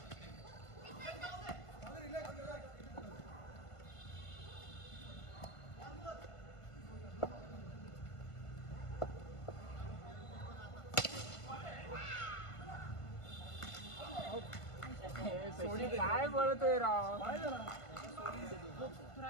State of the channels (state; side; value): late; right; 1.5 ms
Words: काय बोलतोय राव? तू